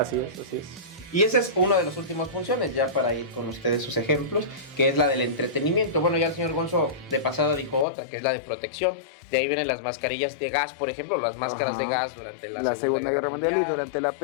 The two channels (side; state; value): right; drops out; at 7.9 s